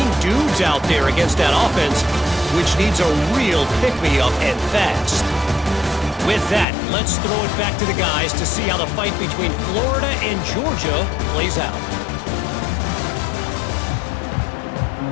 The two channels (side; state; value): right; drops out; at 6.7 s